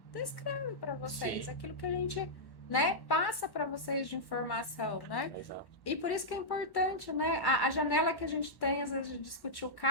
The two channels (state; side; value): late; right; 1.1 ms